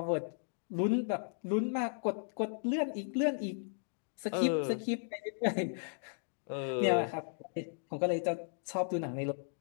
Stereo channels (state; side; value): silent; right; digital silence